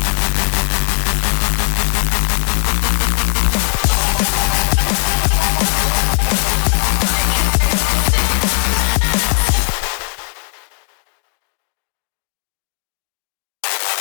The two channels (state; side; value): silent; right; 55 dB below the other